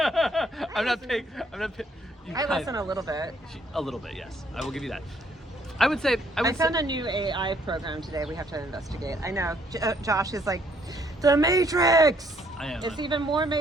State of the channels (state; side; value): normal; both; correlation 0.67